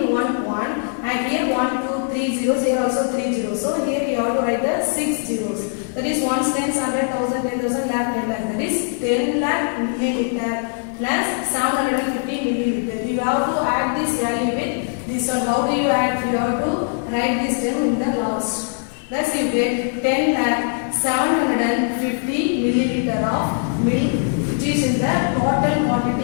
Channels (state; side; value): silent; right; 65 dB below the other